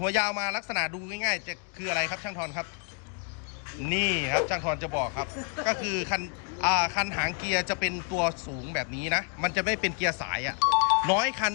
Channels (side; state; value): right; quieter; 39.4 dB